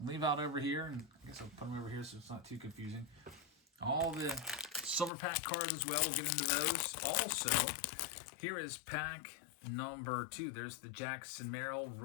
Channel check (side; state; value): right; drops out; at 5.1 s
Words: leave out over here, and I guess I'll put them over here so it's not too confusing. All the silver pack cards as well, we'll get into those. Also, here is pack number 2. There's the Jackson Merrill